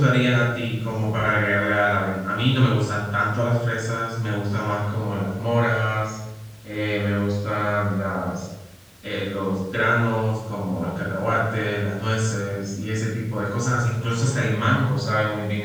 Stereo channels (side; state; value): both; identical; correlation 1.00